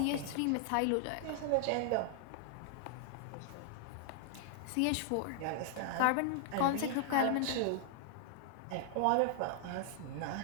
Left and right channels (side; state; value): both; different; correlation -0.01